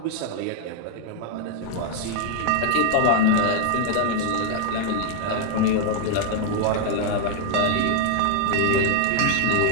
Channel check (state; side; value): different; both; correlation 0.00